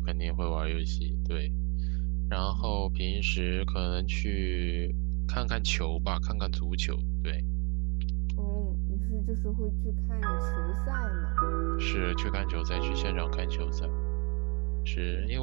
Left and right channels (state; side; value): quieter; left; 30.9 dB